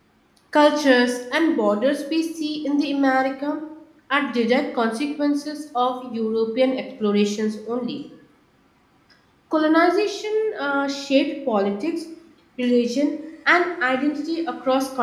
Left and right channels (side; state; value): both; identical; correlation 1.00